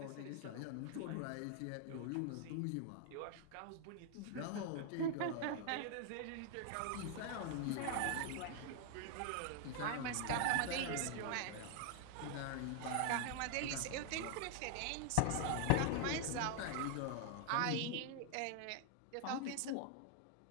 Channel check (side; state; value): both; different; correlation 0.00